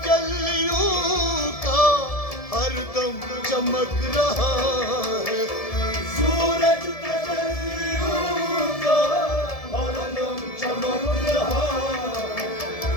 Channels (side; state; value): right; late; 1.7 ms